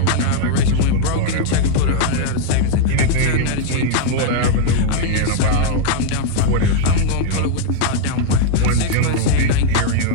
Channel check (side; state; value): both; different; correlation 0.00